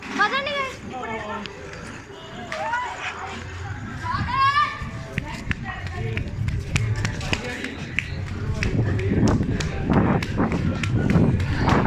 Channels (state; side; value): identical; both; correlation 1.00